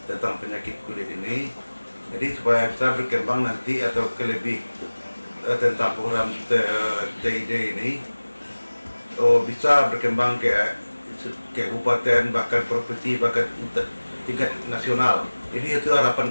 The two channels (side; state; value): both; inverted; correlation -1.00